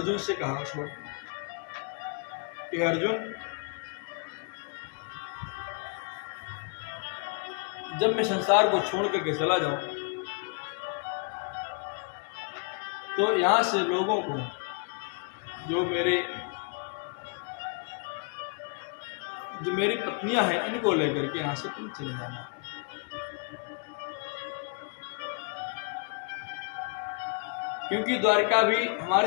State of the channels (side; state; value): right; quieter; 37.9 dB